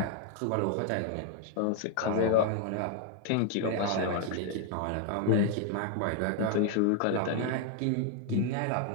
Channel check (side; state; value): both; different; correlation 0.00